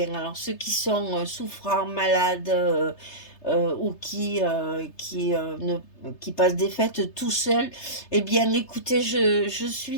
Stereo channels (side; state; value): right; late; 3.3 ms